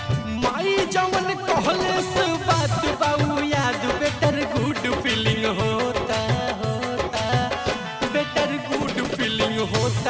माई जवन कहले से बात बाऊ याद, बेटर गुड फीलिंग होता बेटर गुड फीलिंग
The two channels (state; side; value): identical; both; correlation 1.00